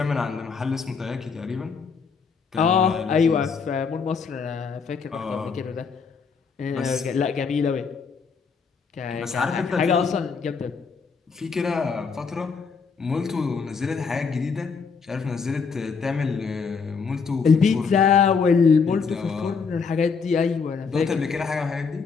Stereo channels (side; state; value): right; quieter; 5.4 dB